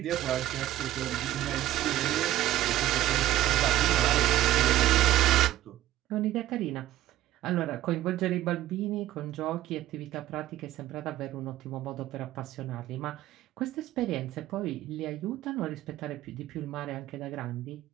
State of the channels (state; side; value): quieter; left; 14.4 dB